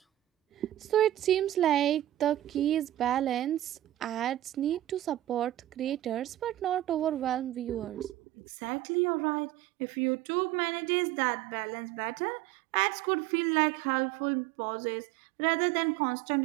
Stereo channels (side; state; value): left; drops out; at 8.2 s